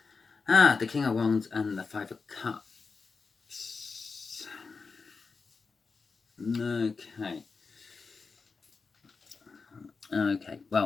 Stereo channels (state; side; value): quieter; right; 4.6 dB